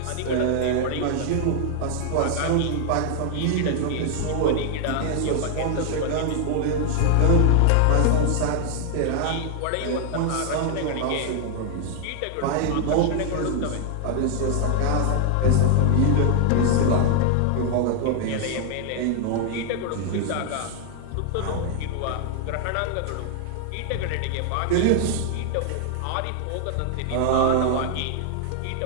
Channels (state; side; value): different; both; correlation 0.00